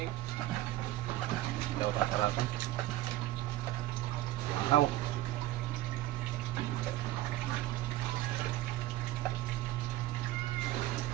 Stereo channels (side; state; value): left; quieter; 15.4 dB